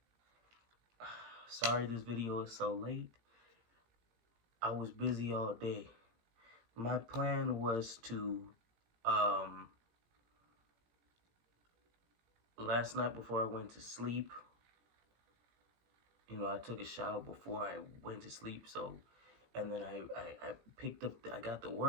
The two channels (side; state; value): left; late; 17 ms